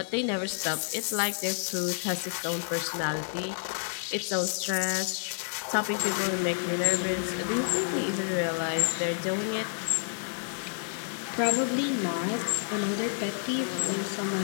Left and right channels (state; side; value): silent; right; digital silence